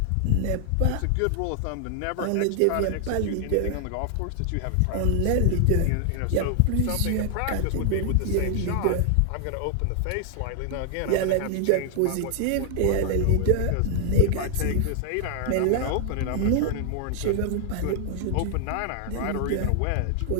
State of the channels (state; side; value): different; both; correlation 0.00